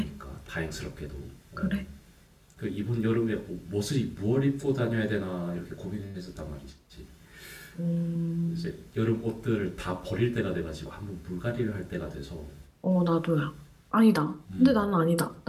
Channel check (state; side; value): identical; both; correlation 1.00